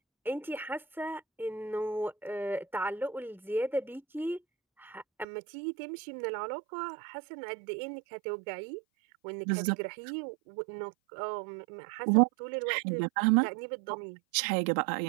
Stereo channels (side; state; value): left; drops out; at 5.2 s